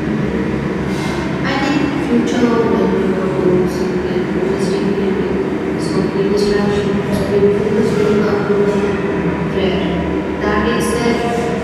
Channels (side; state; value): both; identical; correlation 1.00